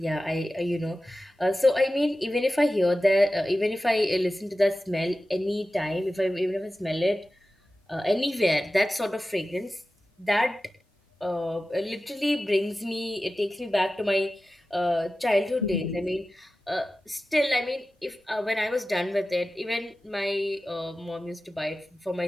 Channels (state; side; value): normal; both; correlation 0.95